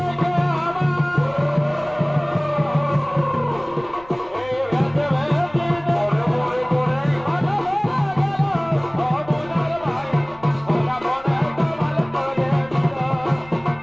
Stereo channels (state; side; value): noise; left; rumble, 23 dB below the sound